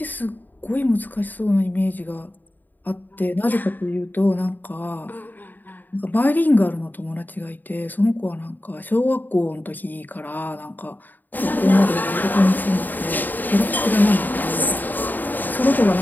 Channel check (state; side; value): late; right; 0.088 ms